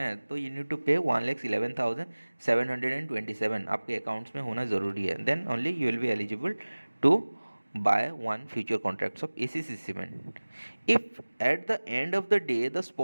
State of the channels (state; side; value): inverted; both; correlation -1.00